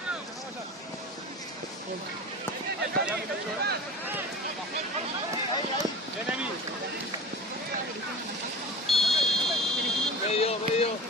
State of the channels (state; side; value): normal; both; correlation 0.35